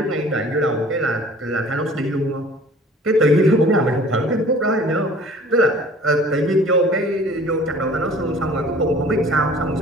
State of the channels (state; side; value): normal; both; correlation 0.49